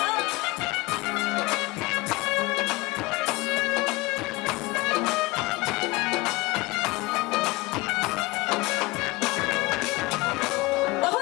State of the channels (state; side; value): quieter; right; 22.7 dB